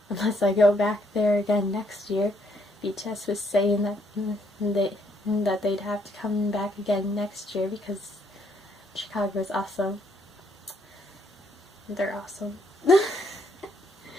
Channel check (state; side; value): normal; both; correlation 0.71